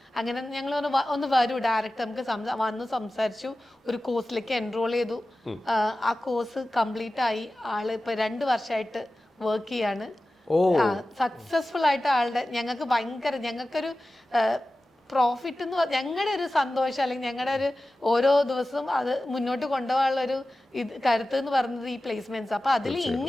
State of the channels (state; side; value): normal; both; correlation 0.95